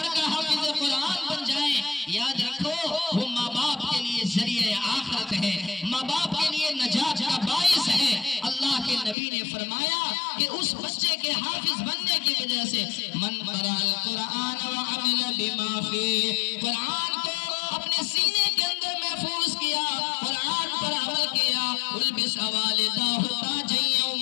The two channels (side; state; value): right; drops out; at 9.2 s